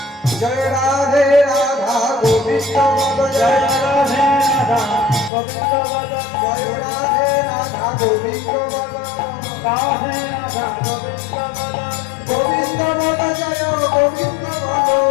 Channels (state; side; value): drops out; right; at 5.3 s